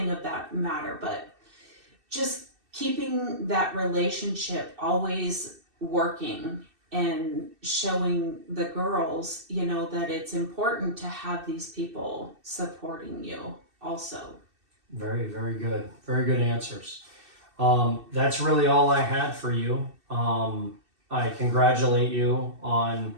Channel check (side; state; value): left; late; 2.6 ms